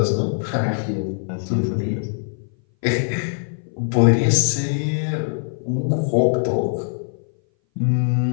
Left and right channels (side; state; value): right; silent; 59 dB below the other